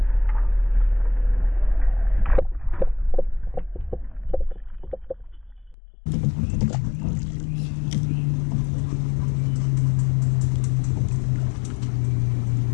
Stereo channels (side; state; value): right; drops out; at 5.8 s